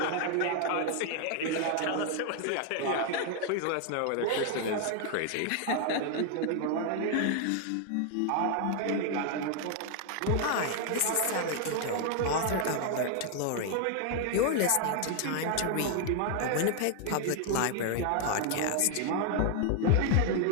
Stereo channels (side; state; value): both; different; correlation 0.00